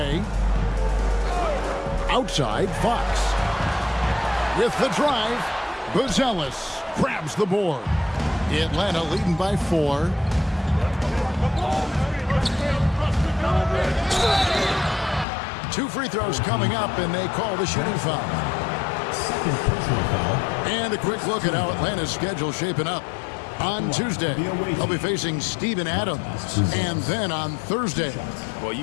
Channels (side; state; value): right; drops out; at 15.2 s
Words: Outside, Fox. With the drive, Buzelis grabs the board. Atlanta leading by 4. Two free throws coming up, and they call the shooting foul. Second personal foul. And a quick look at how Atlanta's schedule shaping up. On Tuesday, they'll be facing Steven Adams. And then on Thursday. Well,